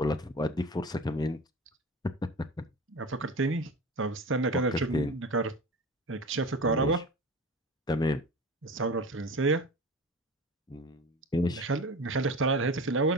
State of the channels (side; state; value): both; normal; correlation 0.32